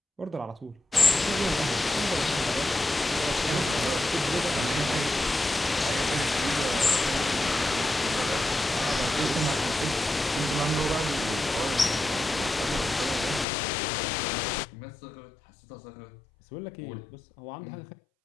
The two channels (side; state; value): right; drops out; at 13.5 s